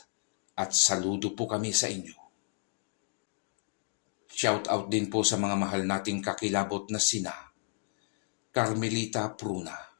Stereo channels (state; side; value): silent; right; digital silence